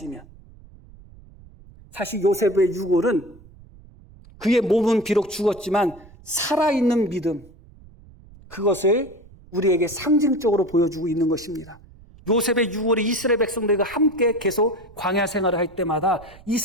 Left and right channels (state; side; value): noise; right; rumble, 22 dB below the sound